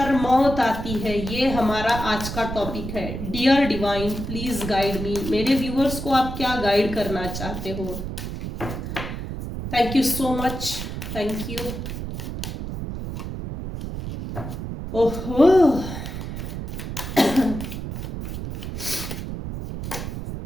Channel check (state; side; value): noise; right; rumble, 6 dB below the sound